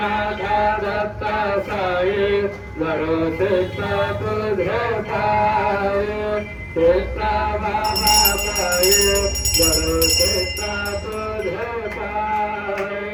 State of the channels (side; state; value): both; identical; correlation 1.00